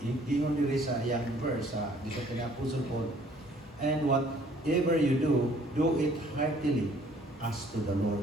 gingon diri sa iyang verse dito kini Apostle Paul, and whatever you do it heartily as to the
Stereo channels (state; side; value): normal; both; correlation 0.59